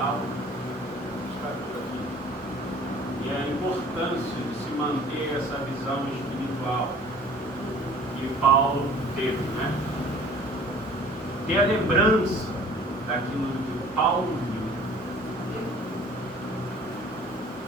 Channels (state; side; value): normal; both; correlation 0.50